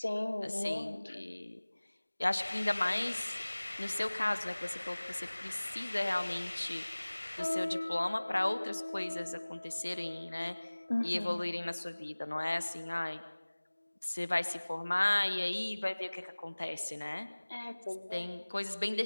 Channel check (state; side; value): inverted; both; correlation -1.00